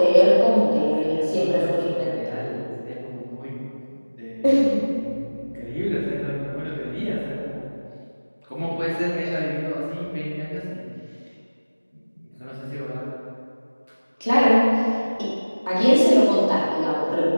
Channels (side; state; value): both; inverted; correlation -1.00